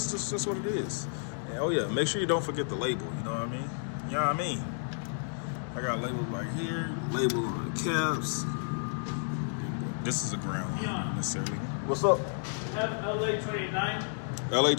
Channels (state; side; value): silent; right; digital silence